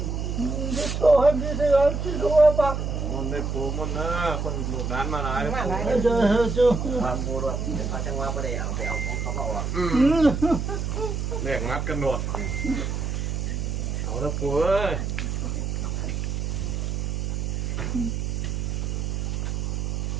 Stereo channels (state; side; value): noise; right; hum, 2 dB below the sound